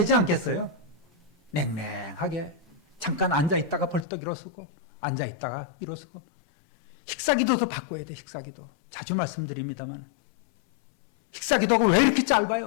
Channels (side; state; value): right; drops out; at 4.0 s